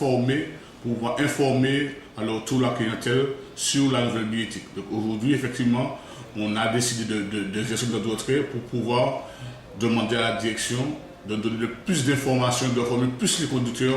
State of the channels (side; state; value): both; identical; correlation 1.00